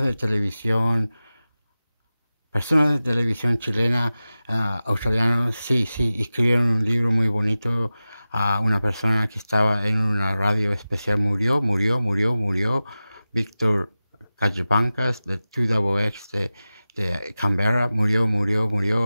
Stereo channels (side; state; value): both; inverted; correlation -0.96